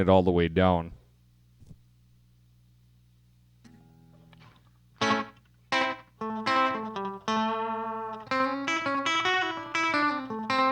all the way down.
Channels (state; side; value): identical; both; correlation 1.00